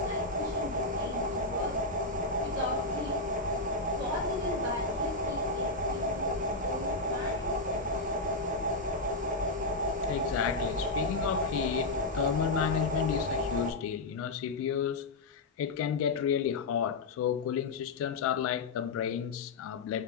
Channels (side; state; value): right; quieter; 3.2 dB